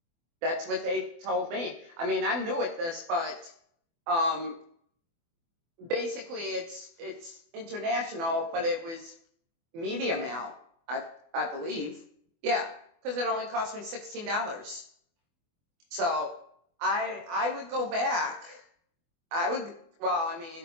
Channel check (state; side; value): late; left; 24 ms